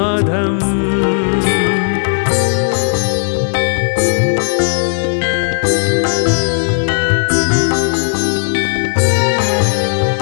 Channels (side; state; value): right; silent; digital silence